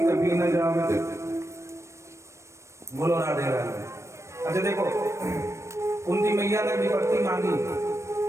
कभी न जावे। बोलो राधे राधे। अच्छा देखो कुंती मैया ने विपत्ति मांगी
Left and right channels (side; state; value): left; late; 0.14 ms